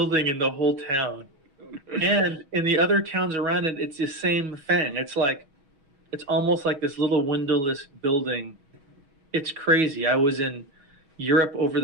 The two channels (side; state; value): left; late; 6.2 ms